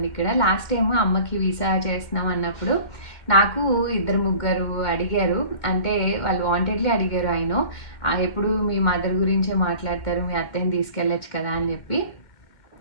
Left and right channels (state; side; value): late; right; 2.1 ms